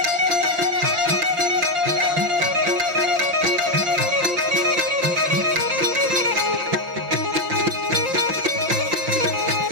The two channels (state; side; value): late; left; 5.7 ms